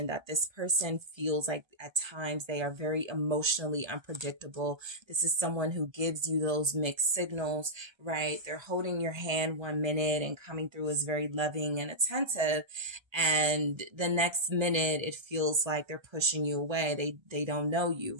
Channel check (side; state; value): left; late; 1.3 ms